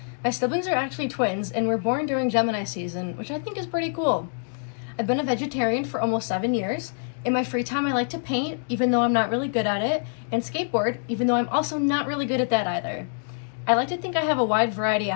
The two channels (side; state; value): right; silent; digital silence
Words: My siblings are actually twins, and were born during Gemini season, which I think is pretty cool. I've been a vegetarian for almost 7 years. In my free time, I like to paint, even though I'm not really good at it, and skateboard, even though I'm also not really good at that either. I like to think I have a wide variety of